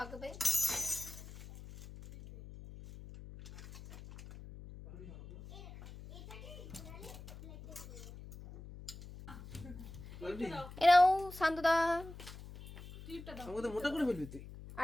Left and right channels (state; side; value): noise; left; hum, 14 dB below the sound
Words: এরাও শান্তদা, আমাকে তো মোটা করে ফেলবি তুই।